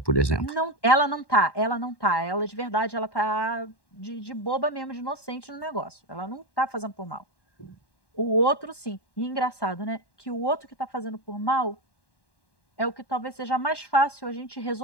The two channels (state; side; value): late; right; 1.1 ms